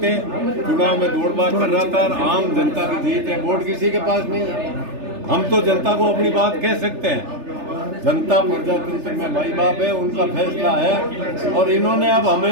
चुनाव में दौड़-भाग कर रहा था। और आम जनता की जीत है, वोट किसी के पास नहीं है। हम तो जनता को अपनी बात कह सकते हैं। जनता प्रजातंत्र में माई बाप है, उनका फैसला है। और इन्होंने अब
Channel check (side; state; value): left; late; 3.4 ms